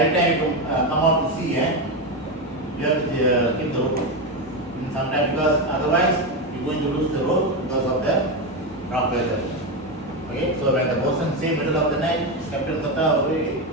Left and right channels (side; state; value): both; normal; correlation 0.12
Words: time you come out to sea, you have to keep the rope. Sometimes because otherwise you're going to lose the rope because of the rough weather. Okay, so when the bosun say middle of the night, captain kata,